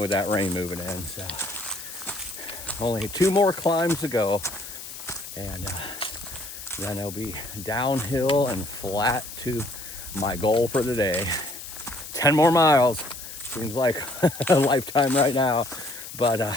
that rain moving in. So only 2 more climbs to go, and then it'll be downhill and flat to my goal for the day. 10 more miles. Seems like a lifetime right now.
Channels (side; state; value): left; noise; hiss, 12 dB below the sound